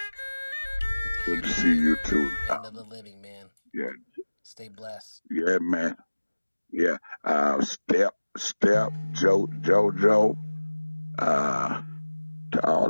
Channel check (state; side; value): inverted; both; correlation -1.00